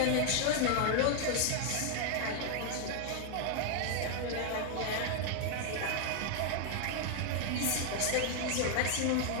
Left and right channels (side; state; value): both; different; correlation 0.00